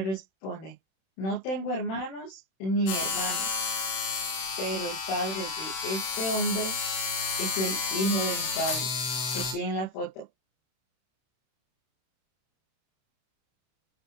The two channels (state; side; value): late; right; 31 ms